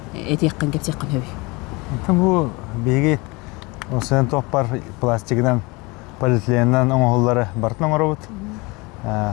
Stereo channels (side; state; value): right; quieter; 25.8 dB